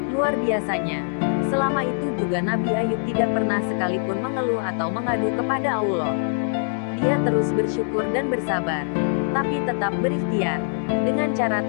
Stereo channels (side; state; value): right; silent; 63 dB below the other